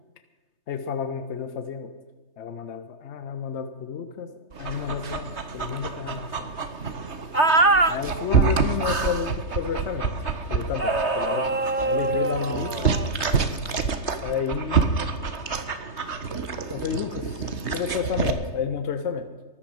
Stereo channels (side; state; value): right; late; 3.3 ms